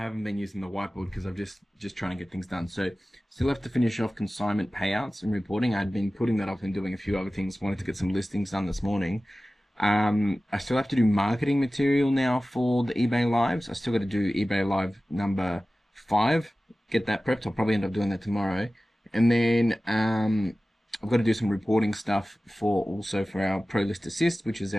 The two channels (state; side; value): normal; both; correlation 0.96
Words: been using the whiteboard because I'm just trying to get things done. So still have to finish off consignment payouts and reporting. I'd been putting that off and doing a few other things. Wanted to get some listings done this morning. I still have to do marketing material now for the eBay Lives. I still got to do eBay Live number 5. Get that prepped. I'll probably end up doing that tomorrow. And then I've got to do some reporting stuff for our Pro List Assist, which is